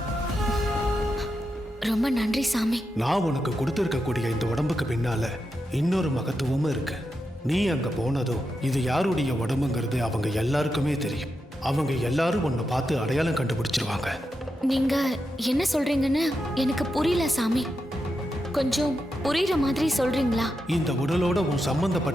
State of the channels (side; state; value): both; normal; correlation 0.87